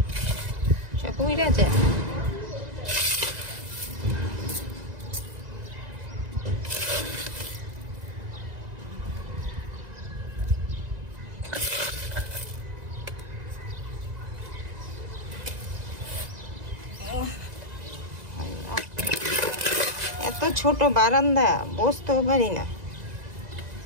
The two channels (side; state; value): left; late; 2.0 ms